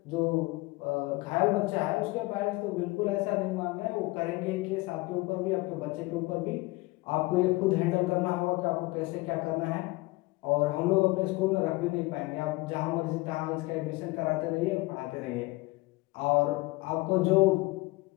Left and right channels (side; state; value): right; quieter; 22.0 dB